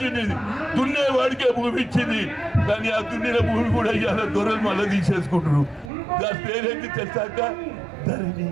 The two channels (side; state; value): left; drops out; at 5.9 s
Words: దున్నేవాడికే భూమి ఇచ్చింది. కానీ ఆ దున్నిన భూమి కూడా ఇవాళ దొరలు మళ్ళీ తీసేసుకుంటారు. దాని పేరేంటి తెలుసాక? ధరణి.